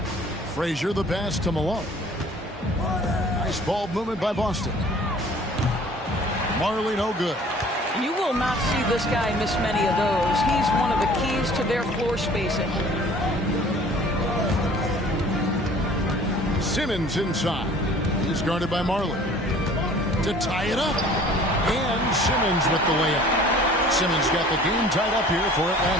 Frazier the pass to Malone. Nice ball movement by Boston. Marley no good. You will not see this guy miss many of those. He's one of the keys to their floor spacing. Simmons inside. He's guarded by Marley. To tie it up. And Simmons with the layup. Simmons got the game tied up here for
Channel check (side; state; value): both; normal; correlation 0.50